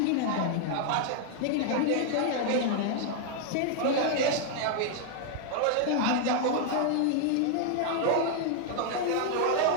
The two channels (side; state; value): both; different; correlation 0.00